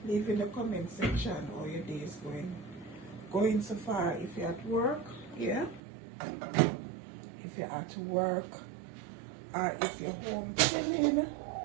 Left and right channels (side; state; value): left; drops out; at 5.8 s